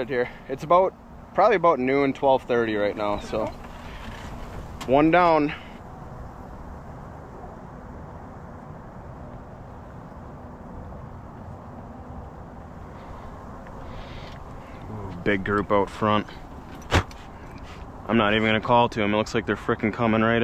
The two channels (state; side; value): identical; both; correlation 1.00